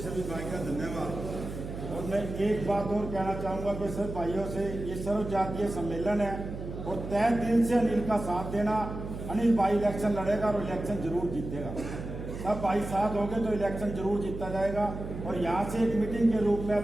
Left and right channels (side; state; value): right; noise; hum, 8 dB below the sound